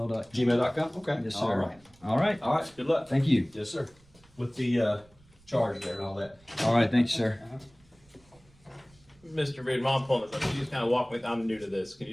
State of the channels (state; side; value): noise; right; rumble, 29 dB below the sound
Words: Gmail.com? Okay. Yes, sir. All right. All right. All right. Good luck. Thank you. Yes, sir. With the charge there and all that. All right. Thanks, sir. Mr. Reed, while I'm pulling this up, can you just kind of walk me? I'm new to this. Can